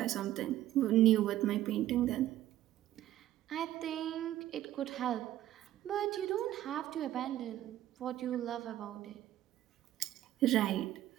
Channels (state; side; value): quieter; left; 13.5 dB